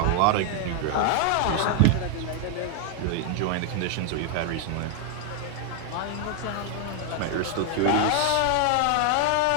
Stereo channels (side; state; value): both; different; correlation 0.00